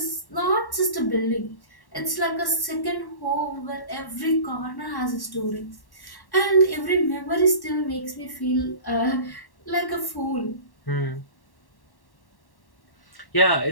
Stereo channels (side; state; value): right; late; 1.1 ms